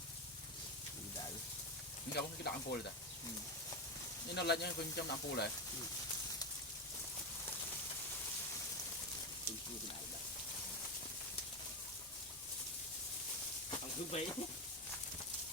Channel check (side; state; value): both; normal; correlation 0.13